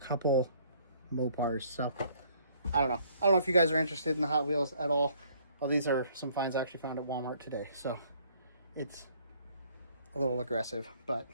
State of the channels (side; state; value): both; inverted; correlation -0.62